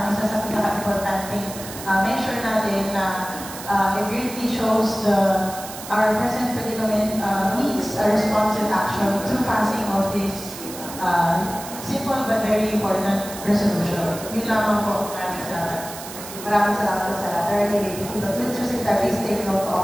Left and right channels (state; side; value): noise; right; hiss, 12 dB below the sound